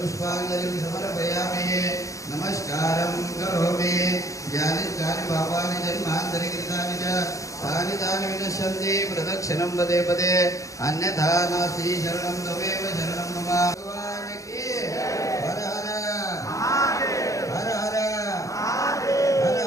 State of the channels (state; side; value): late; right; 0.16 ms